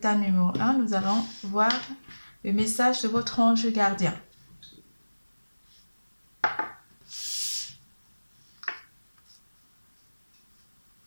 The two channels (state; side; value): inverted; both; correlation -1.00